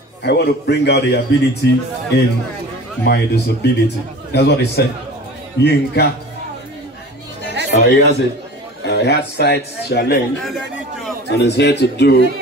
I want to bring out the ability in my disability. That's what he said. Yinka. He has it. He had sight challenge and is here to do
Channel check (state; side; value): normal; both; correlation 0.39